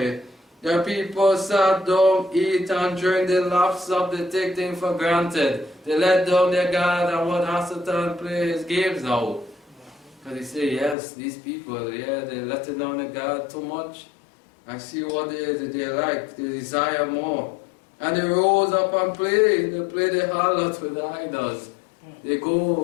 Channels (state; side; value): drops out; right; at 11.0 s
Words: The people sat down, eat and drink, they laughed up, they take things for granted. They let down their God and want Satan play his games now. Because they say, yes, these people, yeah, they're letting down their God too much. I see what they like, they desire more. And they rose up and play. They play the harlot with the idols. They